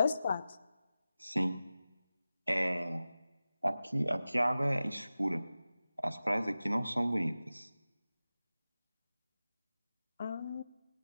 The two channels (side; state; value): both; inverted; correlation -0.95